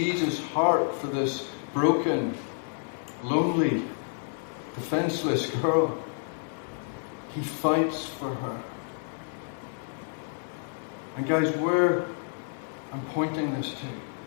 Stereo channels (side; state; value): right; silent; digital silence